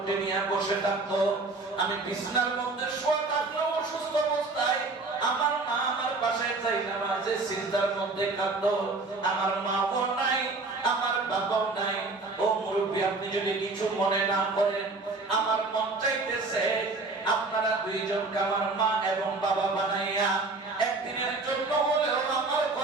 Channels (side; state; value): left; quieter; 3.5 dB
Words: নিয়ে বসে থাকতো। আমি বিছানার মধ্যে শোয়া থাকলেও অসুস্থ অবস্থায় আমার মা আমার পাশে যাই নামাজে সিজদার মধ্যে কাঁদতো। আমার মাও নাই, আমার বাবাও নাই। ও মুরব্বী, আপনি যদি কিছু মনে না করেন, আমার মন চাইতেছে আপনারা 2 জনকে আমার মা এবং বাবা বানাইয়া একদিনের জন্য হলেও আমার